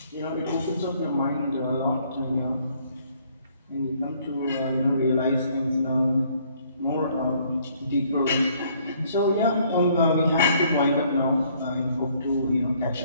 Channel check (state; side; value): inverted; both; correlation -0.64